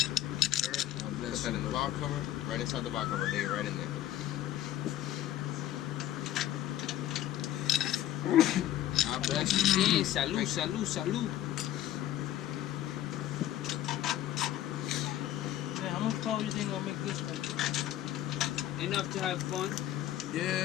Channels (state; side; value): quieter; right; 12.8 dB